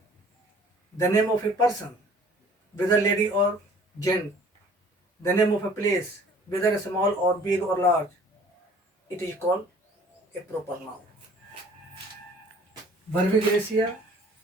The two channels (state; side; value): normal; both; correlation 0.52